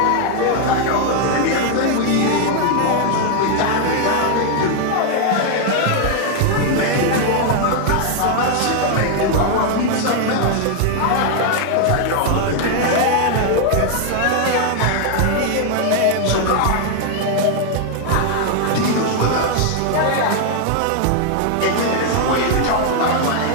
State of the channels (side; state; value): both; different; correlation 0.00